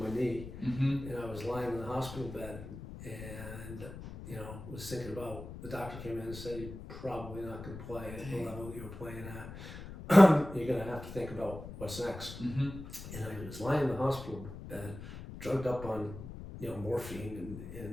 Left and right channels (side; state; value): left; noise; rumble, 11 dB below the sound